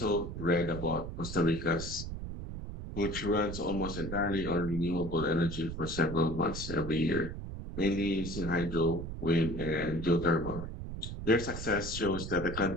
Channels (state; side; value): noise; right; rumble, 7 dB below the sound